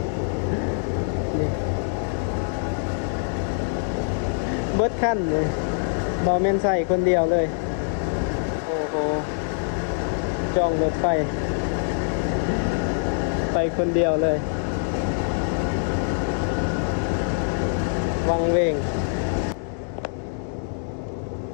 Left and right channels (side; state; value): right; silent; digital silence